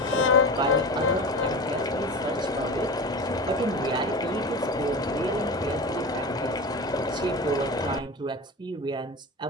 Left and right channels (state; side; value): normal; both; correlation 0.28